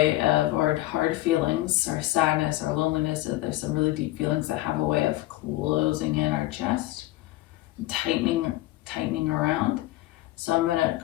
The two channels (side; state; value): right; quieter; 17.1 dB